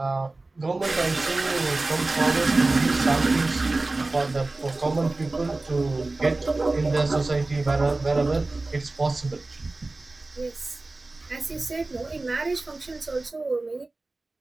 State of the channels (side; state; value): left; quieter; 3.2 dB